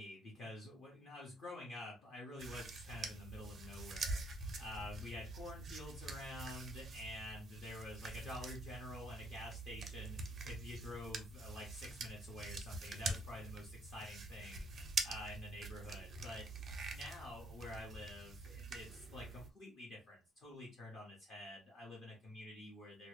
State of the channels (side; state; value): both; normal; correlation 0.67